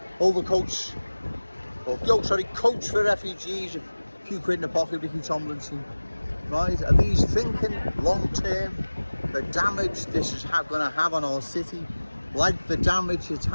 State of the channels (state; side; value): inverted; both; correlation -1.00